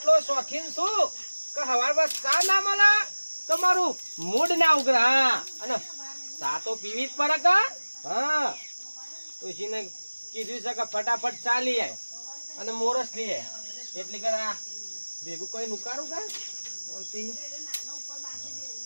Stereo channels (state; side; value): inverted; both; correlation -1.00